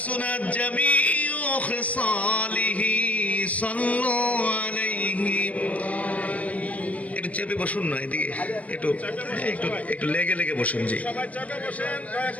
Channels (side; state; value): right; late; 0.069 ms